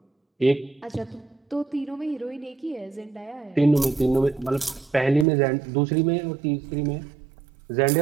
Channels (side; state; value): left; drops out; at 5.2 s